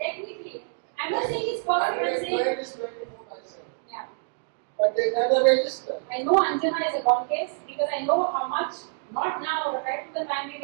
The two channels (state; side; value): silent; left; digital silence